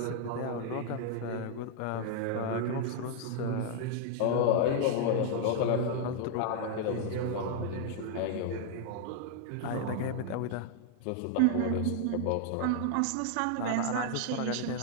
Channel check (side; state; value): both; different; correlation 0.00